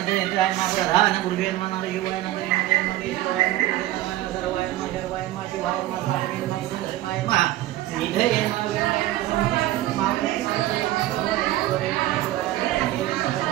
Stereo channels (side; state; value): left; quieter; 15.4 dB